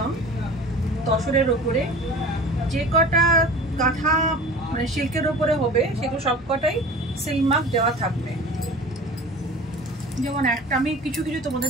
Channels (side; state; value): both; normal; correlation 0.39